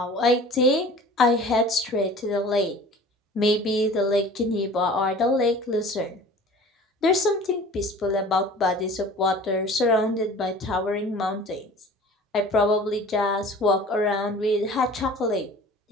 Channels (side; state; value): both; normal; correlation 0.43